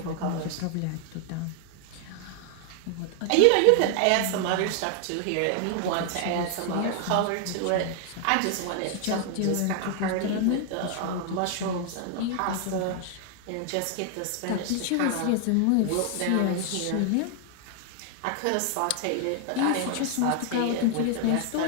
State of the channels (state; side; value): different; both; correlation 0.00